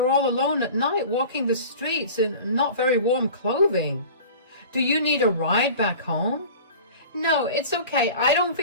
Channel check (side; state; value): both; inverted; correlation -0.39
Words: all alone at night walking the streets in not very warm clothing. Do you need a ride back home? No, it's okay. I don't